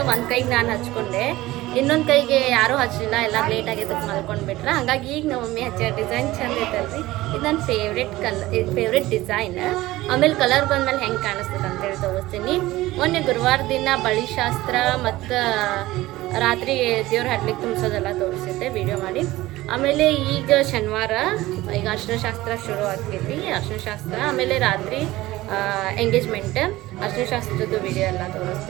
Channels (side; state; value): left; quieter; 17.7 dB